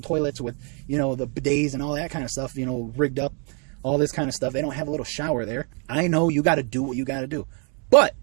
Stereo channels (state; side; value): quieter; left; 38.4 dB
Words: toilets with, you know, the bidets and all that kind of stuff, you know, rigged up, all this kind of stuff. They don't have a little shower there. I know you got to do what you got to do. But